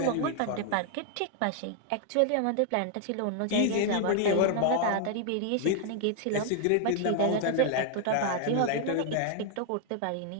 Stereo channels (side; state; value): both; different; correlation 0.00